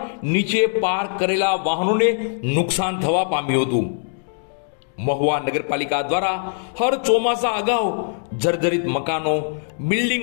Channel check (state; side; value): silent; right; digital silence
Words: નીચે પાર્ક કરેલા વાહનોને નુકસાન થવા પામ્યું હતું. મહુવા નગરપાલિકા દ્વારા હર ચોમાસા અગાઉ જર્જરિત મકાનો,